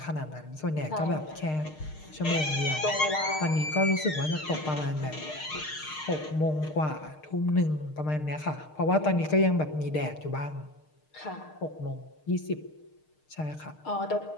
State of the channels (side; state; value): right; late; 6.5 ms